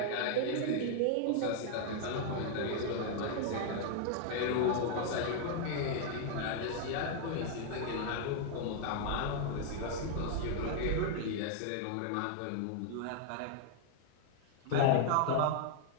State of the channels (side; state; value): both; different; correlation 0.00